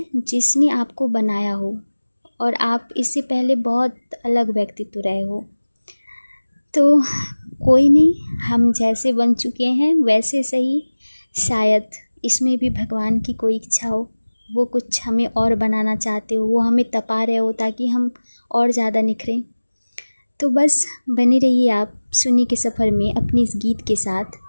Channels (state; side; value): inverted; both; correlation -1.00